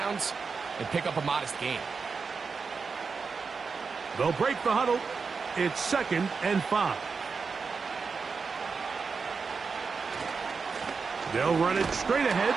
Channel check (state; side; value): quieter; left; 5.1 dB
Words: and pick up a modest gain. They'll break the huddle. It's second and 5. They'll run it straight ahead